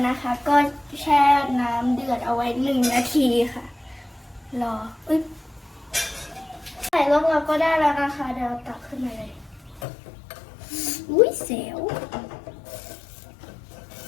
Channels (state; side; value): drops out; right; at 9.9 s